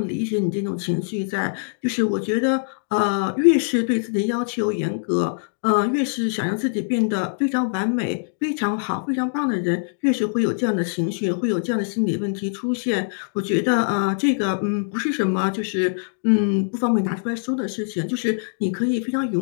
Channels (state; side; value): silent; right; digital silence